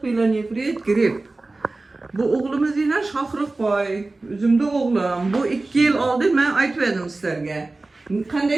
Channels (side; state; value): left; quieter; 3.2 dB